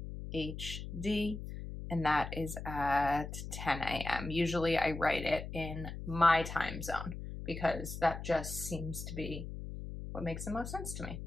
and that is at 10 a.m. Usually I write it in my time zone because that just seems to be what makes the most sense to me.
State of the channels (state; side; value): noise; left; hum, 8 dB below the sound